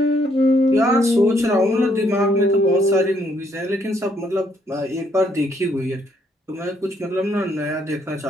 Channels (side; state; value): both; normal; correlation 0.70